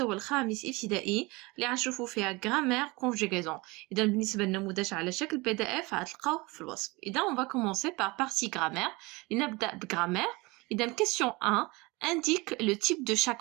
الخامس ابتدائي اللي غنشوفو فيها غرامير كونجيغيزون. إذا بالنسبة للنموذج على شكل PDF غتلقاوه في الوصف. إذا on va commencer par partie grammaire. لنبدأ بغرامير. إذا question 1 indique le type de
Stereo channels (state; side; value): quieter; left; 24.3 dB